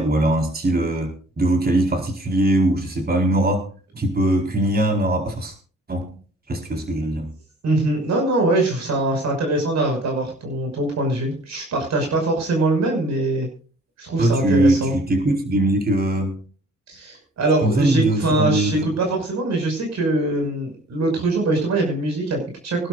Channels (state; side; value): normal; both; correlation 0.52